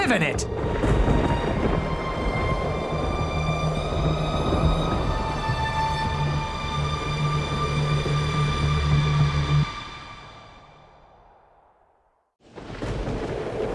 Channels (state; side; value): identical; both; correlation 1.00